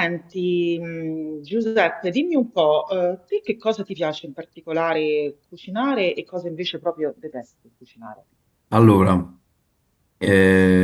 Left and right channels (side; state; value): both; identical; correlation 1.00